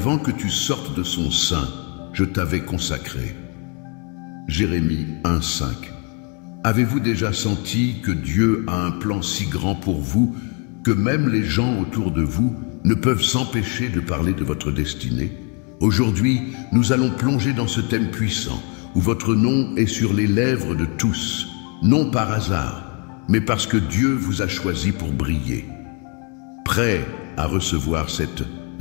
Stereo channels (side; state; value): right; quieter; 33.7 dB